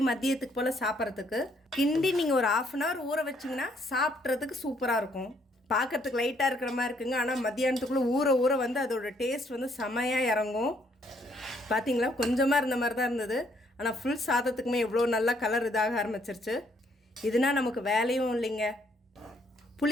மதியத்துக்கு போல் சாப்பிட்றதுக்கு கிண்டி நீங்கள் ஒரு 1/2 அன் ஹவர் ஊற வச்சிங்கன்னா சாப்பிட்றதுக்கு சூப்பராக இருக்கும். பார்க்குறதுக்கு லைட்டாக இருக்கிற மாதிரி இருக்குங்க, ஆனால் மத்தியானத்துக்குள்ளே ஊற ஊற வந்து அதோட டேஸ்ட் வந்து செமையாக இறங்கும். பார்த்தீங்களா, கொஞ்சமாக இருந்த மாதிரி தான் இருந்தது, ஆனால் ஃபுல் சாதத்துக்குமே எவ்வளோ நல்லா கலர் இதாக ஆரம்பிச்சிருச்சு. இதுனா நமக்கு வேலையும் இல்லைங்க.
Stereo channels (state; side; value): normal; both; correlation 0.68